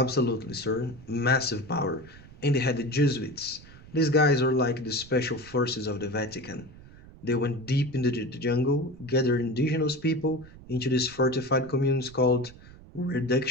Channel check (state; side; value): noise; right; rumble, 20 dB below the sound